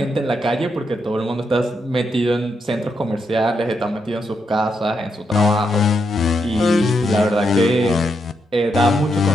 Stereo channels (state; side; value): normal; both; correlation 0.81